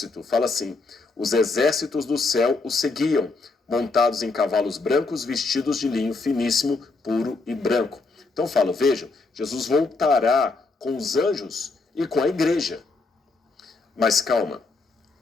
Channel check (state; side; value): quieter; right; 3.7 dB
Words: fala assim: os exércitos do céu o seguiam, montados em cavalos brancos, vestidos de linho finíssimo, puro e branco. Então fala, vejam, Jesus voltará com os anjos e com a igreja. Mas calma,